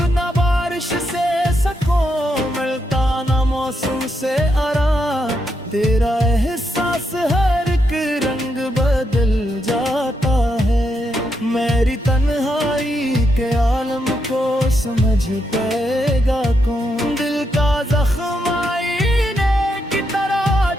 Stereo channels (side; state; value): both; normal; correlation 0.81